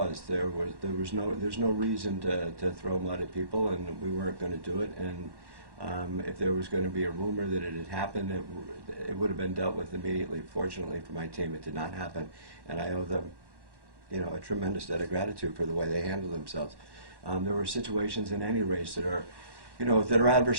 There's no reason to throw mud at people, and we weren't going to do it. And if there was going to be a rumor that it had happened, it would have been dealt with immediately. Fortunately for my team, it did not happen, and I owe them, you know, a tremendous debt of gratitude for the way they handled themselves. There were situations in any race that are, you know, that are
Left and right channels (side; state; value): left; late; 1.1 ms